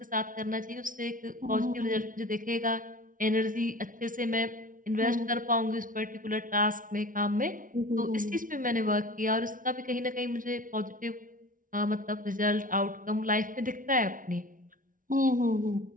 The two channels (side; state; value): left; late; 0.39 ms